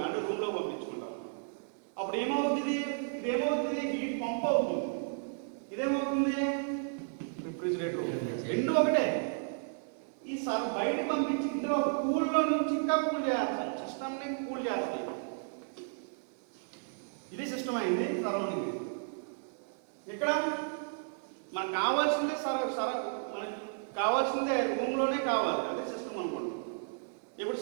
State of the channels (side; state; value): left; silent; 55 dB below the other